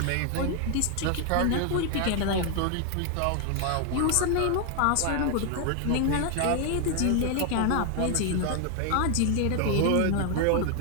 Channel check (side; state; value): both; different; correlation 0.01